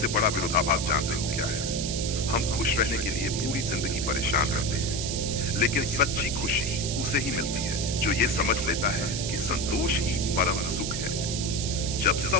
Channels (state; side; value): noise; right; hiss, 4 dB below the sound